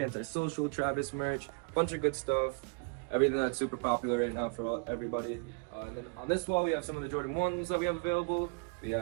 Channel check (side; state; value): left; quieter; 35.5 dB